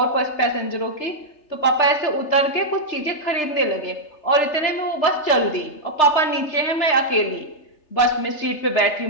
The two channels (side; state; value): right; late; 3.3 ms